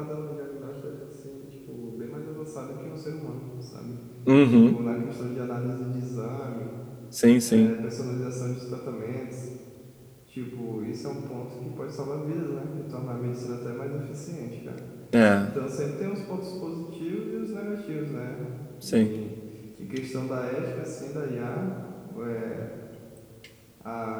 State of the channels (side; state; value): both; identical; correlation 1.00